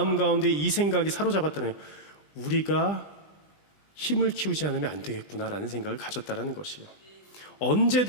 가운데 이 생각이 사로잡았다는 거예요. 우리가 힘을 키우지 않으면 안 되겠구나라는 생각을 가졌다는 것이에요.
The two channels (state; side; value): late; right; 20 ms